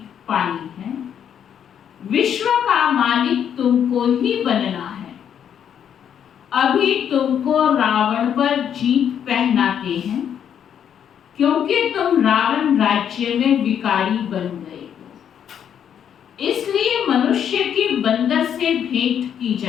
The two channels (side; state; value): right; quieter; 8.8 dB